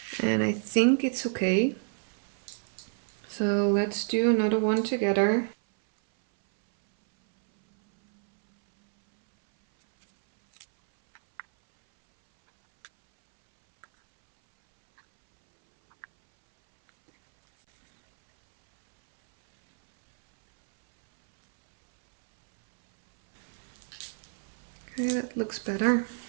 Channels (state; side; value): silent; left; 59 dB below the other